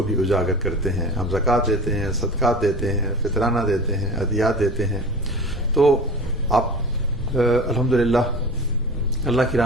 بھی اجاگر کرتے ہیں۔ ہم زکوٰۃ دیتے ہیں، صدقات دیتے ہیں، فطرانہ دیتے ہیں، عطیات دیتے ہیں۔ تو آپ الحمدللہ اللہ کی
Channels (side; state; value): both; normal; correlation 0.35